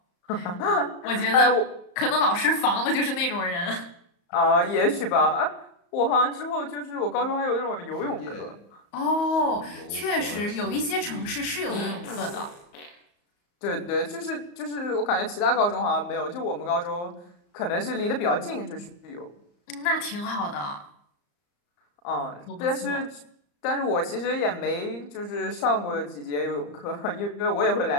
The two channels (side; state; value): right; late; 34 ms